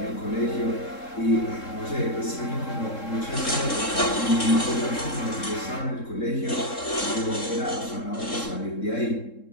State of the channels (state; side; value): late; right; 3.7 ms